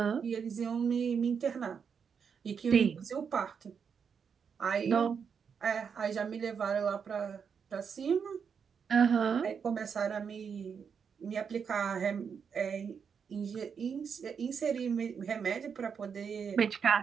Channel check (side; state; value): left; quieter; 6.6 dB